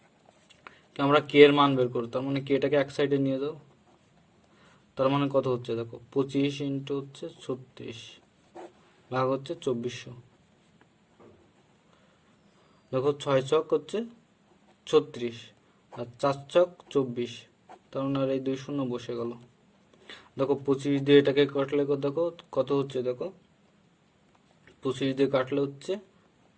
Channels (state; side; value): identical; both; correlation 1.00